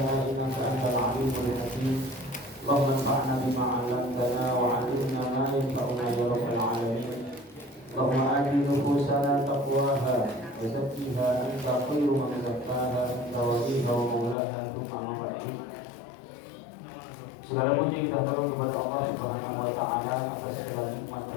innaka antal 'alimul hakim. Allahumma anfa'na bima 'allamtana wa 'allimna ma yanfa'una ya rabbal 'alamin. Allahumma ati nufusana taqwaha wa zakkiha anta khairu man zakkaha anta waliha wa maulaha thumma ma ba'du. Segala puji kita taruh kepada Allah Subhanahu wa taala atas segala nikmat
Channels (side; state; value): right; drops out; at 14.4 s